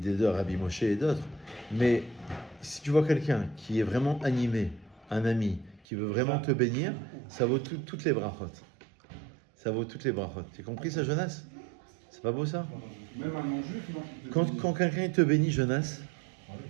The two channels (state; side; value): drops out; left; at 5.8 s